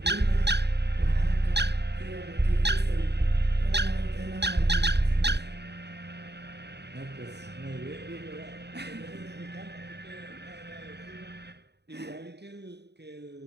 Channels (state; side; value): late; left; 0.49 ms